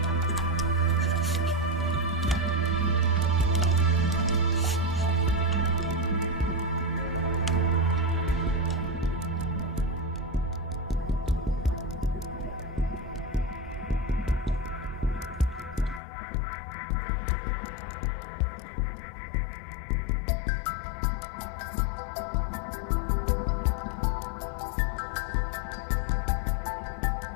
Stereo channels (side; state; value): right; drops out; at 16.0 s